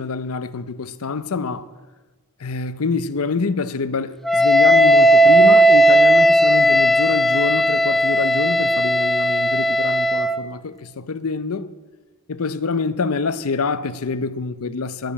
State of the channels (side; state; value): both; normal; correlation 0.72